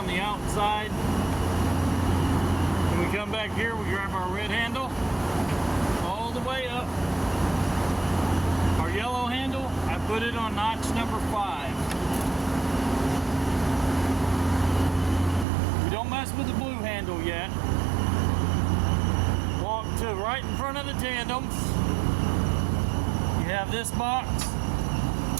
the outside. When we come back here, we grab our red handle all the way up. Our yellow handle, I put it on notch number 5. We don't mess with the blue handle yet. Walk to right in front of the tandems. You have this box.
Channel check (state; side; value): drops out; left; at 15.5 s